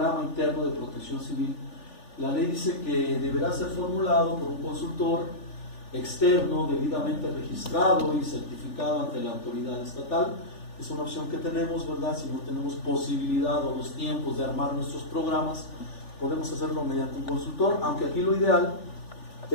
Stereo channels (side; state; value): right; late; 3.4 ms